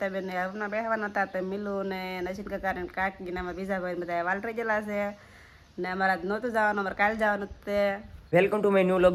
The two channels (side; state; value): both; identical; correlation 1.00